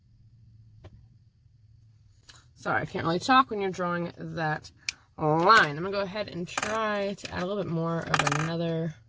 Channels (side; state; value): both; identical; correlation 1.00